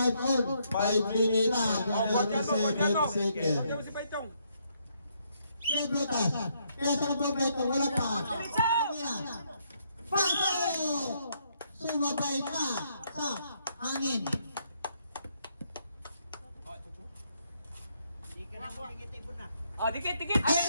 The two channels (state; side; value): inverted; both; correlation -0.73